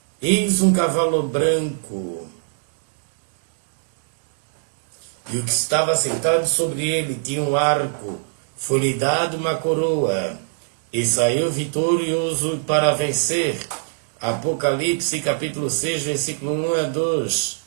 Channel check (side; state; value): left; silent; digital silence